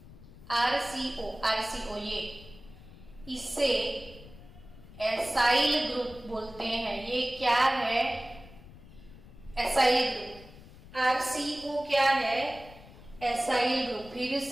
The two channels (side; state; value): left; noise; rumble, 19 dB below the sound